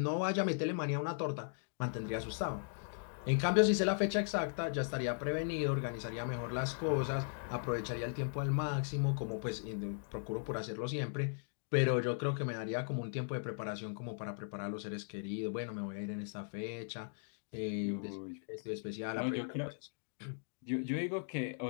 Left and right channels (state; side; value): silent; right; digital silence